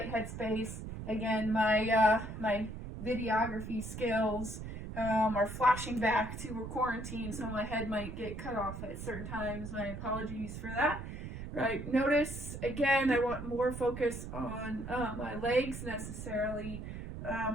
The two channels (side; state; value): right; noise; rumble, 8 dB below the sound